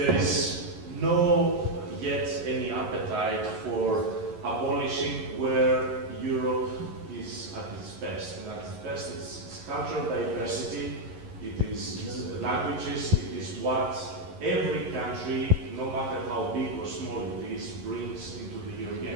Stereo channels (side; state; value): left; late; 11 ms